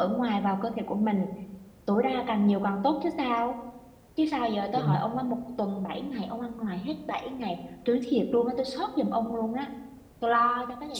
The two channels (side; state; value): both; identical; correlation 1.00